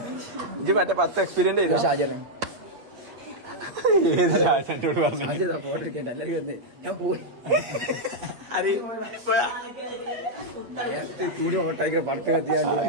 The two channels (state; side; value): late; left; 8.5 ms